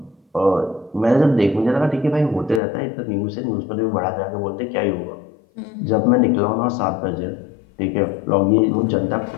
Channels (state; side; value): drops out; right; at 2.6 s